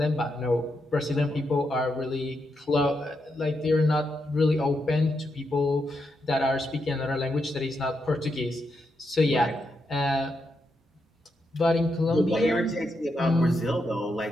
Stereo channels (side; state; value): both; normal; correlation 0.83